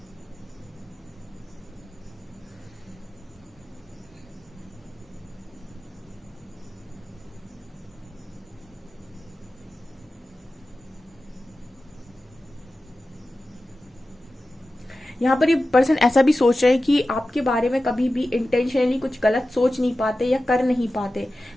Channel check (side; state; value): both; normal; correlation 0.94